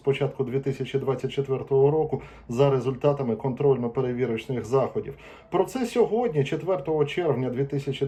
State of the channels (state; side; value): identical; both; correlation 1.00